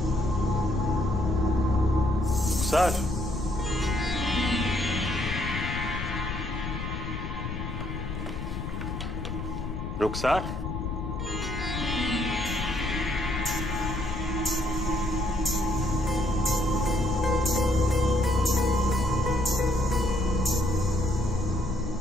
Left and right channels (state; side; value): noise; left; rumble, 5 dB below the sound